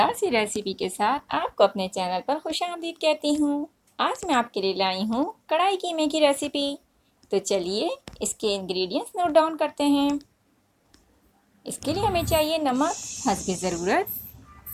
सी रेसिपी के साथ आपको अपने चैनल पर खुशामदीद कहती हूँ। आज मैं आपके लिए लाई हूँ कढ़ाई कीमे की रेसिपी। तो चलिए इसके इंग्रेडिएंट्स नोट डाउन करते हैं। इसके लिए हमें चाहिए नमक हस्ब ज़रूरत,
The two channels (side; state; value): both; identical; correlation 1.00